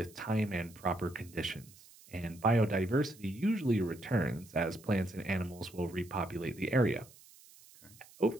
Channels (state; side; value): noise; right; hiss, 23 dB below the sound